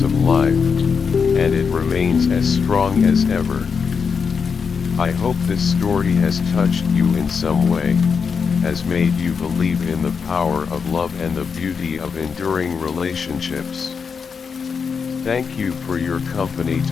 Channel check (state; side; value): quieter; right; 5.9 dB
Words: of life, and it remains as strong as ever. I hope this story has touched you in some way, has made you believe in the power of love and the beauty of enduring relationships. Thank you for your company